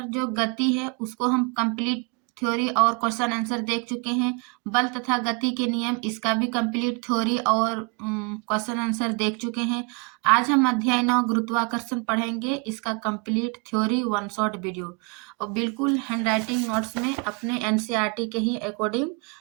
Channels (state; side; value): quieter; left; 31.5 dB